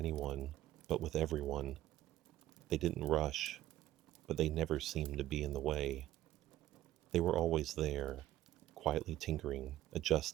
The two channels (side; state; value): left; quieter; 14.1 dB